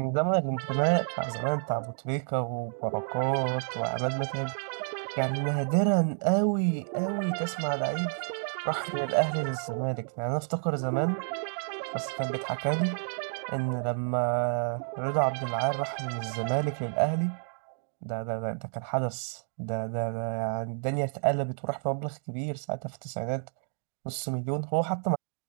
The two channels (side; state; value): left; silent; 58 dB below the other